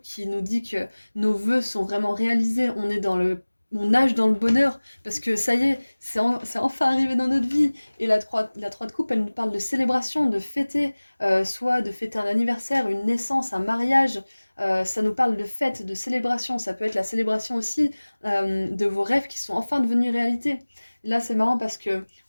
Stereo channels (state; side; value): inverted; both; correlation -1.00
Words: qui nous dit que nos vœux sont vraiment réalisés. On nage dans le bonheur parce que ça y est, c'est enfin arrivé dans notre vie. Et la 3 de coupe, elle nous parle de célébration, de fêter, soit de fêter un anniversaire, une naissance, un mariage. Ça nous parle de fête, de célébration. Ça peut être la célébration aussi de vos rêves qui sont enfin devenus réalité. Là, c'est marrant parce que